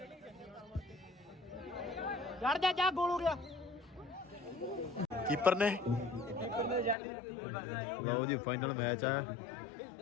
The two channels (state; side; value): drops out; right; at 7.0 s